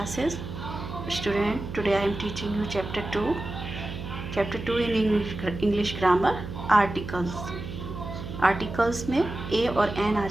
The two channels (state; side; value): noise; right; hum, 8 dB below the sound